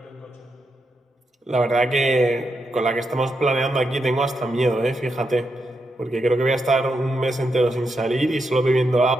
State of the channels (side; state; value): both; normal; correlation 0.84